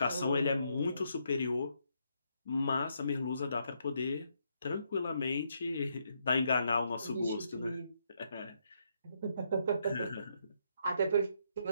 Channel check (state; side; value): inverted; both; correlation -0.76